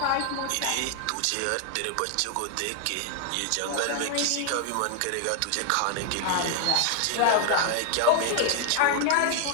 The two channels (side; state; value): both; different; correlation 0.00